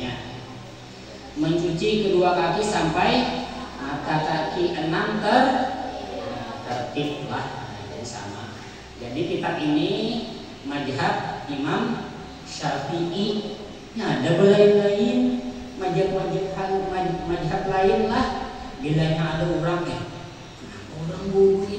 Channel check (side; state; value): both; identical; correlation 1.00